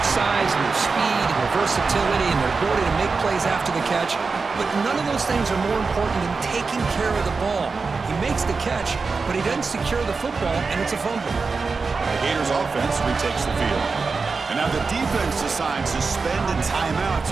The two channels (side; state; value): left; quieter; 4.5 dB